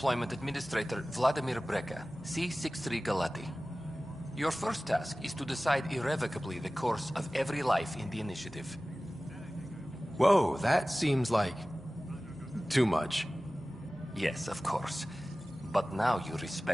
Administrator Vladimir Brecker, C-63 Galati. Your first task is to decide irrevocably the course of every life in the initiative. Whoa, that seems like... too much. Yes, of course. But now you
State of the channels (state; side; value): normal; both; correlation 0.97